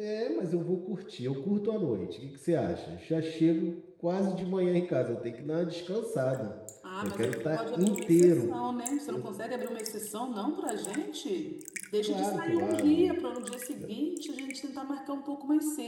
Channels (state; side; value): identical; both; correlation 1.00